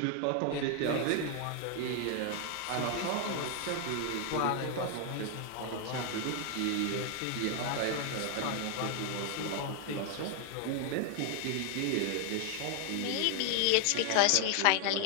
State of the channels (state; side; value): different; both; correlation 0.00